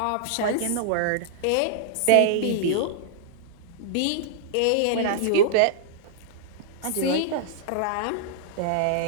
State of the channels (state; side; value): different; both; correlation -0.02